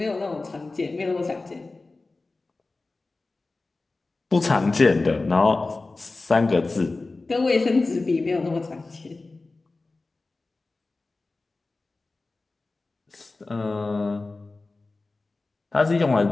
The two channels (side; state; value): right; quieter; 3.4 dB